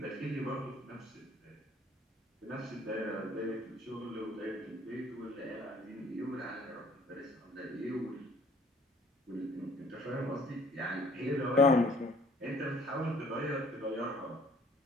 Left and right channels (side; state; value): both; normal; correlation 0.57